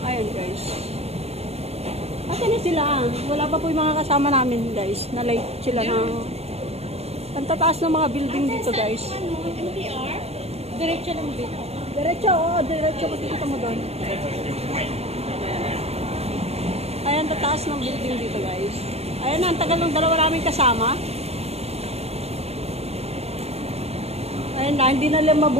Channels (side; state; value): left; late; 0.30 ms